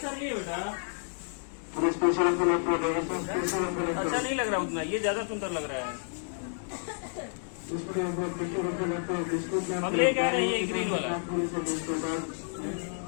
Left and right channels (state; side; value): silent; right; 58 dB below the other